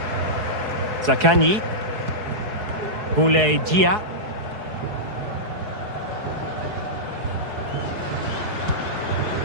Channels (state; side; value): late; left; 4.7 ms